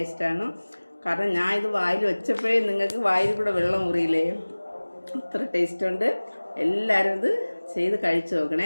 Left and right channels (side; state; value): both; inverted; correlation -1.00